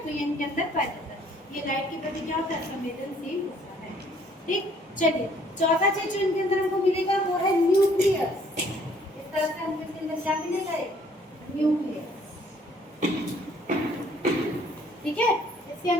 तो ये इनके अंदर पाया जाता है। ये लाइट के प्रति क्या होता है? संवेदनशील होता है। ठीक, चलिए चौथा चीज जो इनके अंदर हमको मिलेगा वो है न्यूक्लियस। इस तरह से हमको इसके अंदर क्या मिलेगा? न्यूक्लियस। ठीक है, इसके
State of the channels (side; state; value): both; normal; correlation 0.61